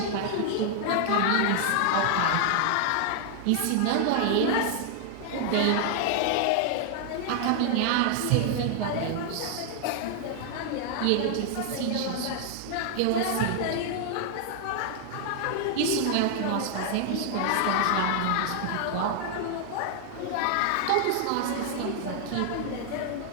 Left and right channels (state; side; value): different; both; correlation 0.00